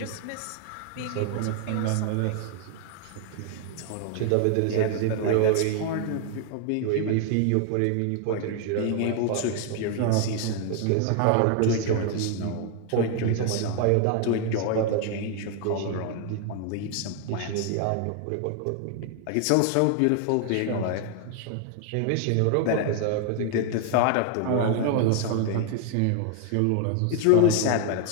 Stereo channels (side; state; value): both; different; correlation 0.00